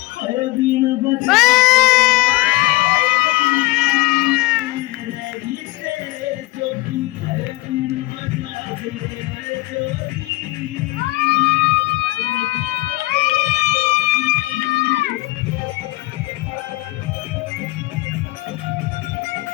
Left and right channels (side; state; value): right; quieter; 20.0 dB